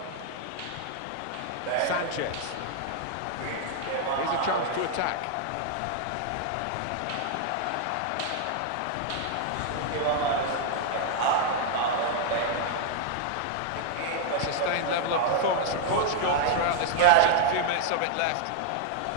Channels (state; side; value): different; both; correlation 0.00